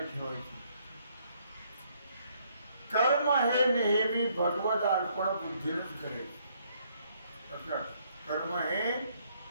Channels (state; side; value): inverted; both; correlation -0.68